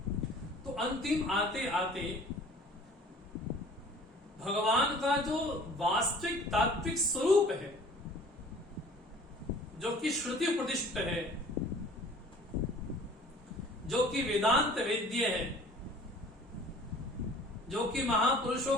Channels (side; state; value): both; normal; correlation 0.49